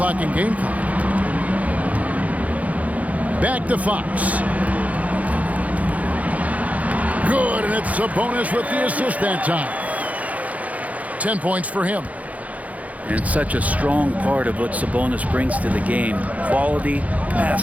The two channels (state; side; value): late; left; 0.070 ms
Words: and game clock. Back to Fox. Good, and it's Sabonis with the assist that time. 10 points for him. And it's such a strong part of what Sabonis brings to the game. Quality